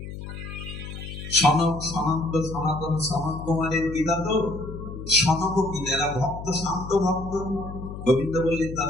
সনক সনন্ত সনাতন সনত কুমারের পিতা তো। সনকপিল, এরা ভক্ত, শান্ত ভক্ত। গোবিন্দ বললেন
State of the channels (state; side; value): noise; left; hum, 10 dB below the sound